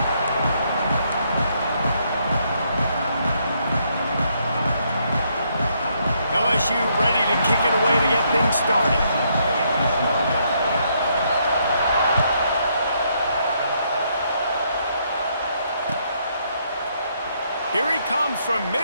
LSU ready to kick it away to get things started. Here he comes from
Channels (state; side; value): inverted; both; correlation -0.73